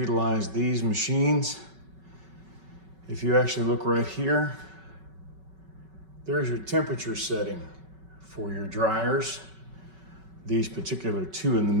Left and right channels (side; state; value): left; late; 5.3 ms